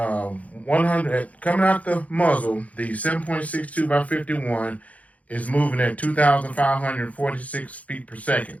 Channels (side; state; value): right; late; 0.069 ms